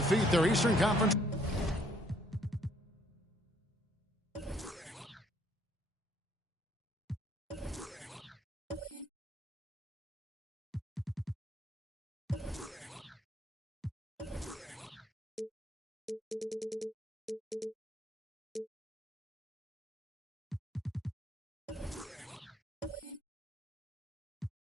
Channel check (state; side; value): normal; both; correlation 0.66